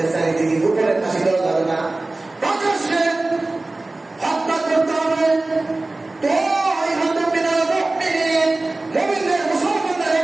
চারিদিকে, উপরে ফাঁসি দেওয়া যাবে না, প্রকাশ্যে হত্যা করতে হবে। তো মুমিনদের মুসলমানদের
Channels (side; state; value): left; quieter; 3.0 dB